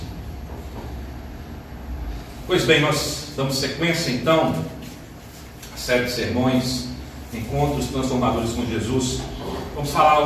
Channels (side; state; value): both; identical; correlation 1.00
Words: Pois bem, nós damos sequência então à série de sermões, Encontros Transformadores com Jesus. Vamos